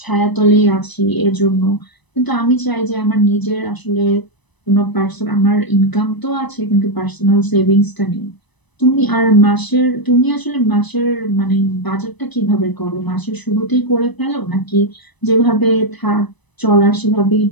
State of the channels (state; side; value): late; right; 1.0 ms